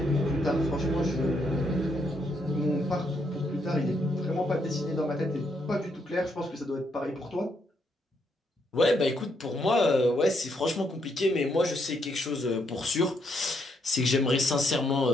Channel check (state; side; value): normal; both; correlation 0.76